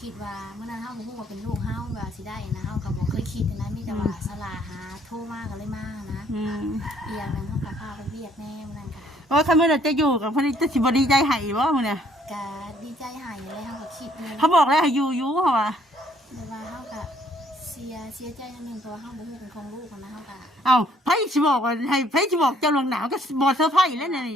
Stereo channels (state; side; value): normal; both; correlation 0.64